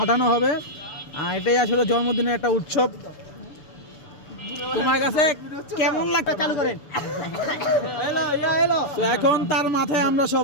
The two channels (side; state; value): right; late; 6.9 ms